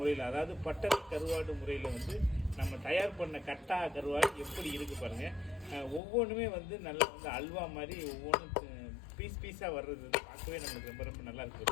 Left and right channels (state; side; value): drops out; right; at 6.0 s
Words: அதாவது பட்டறை கருவாடு முறையில் வந்து நம்ம தயார் பண்ண கட்டா கருவாடு எப்படி இருக்கு பாருங்க. ஒவ்வொன்றுமே வந்து நல்லா வந்து அல்வா மாதிரி ஒவ்வொன்றும் பீஸ் பீஸாக வர்றது வந்து பார்க்கவே நம்மளுக்கு ரொம்ப ரொம்ப நல்லா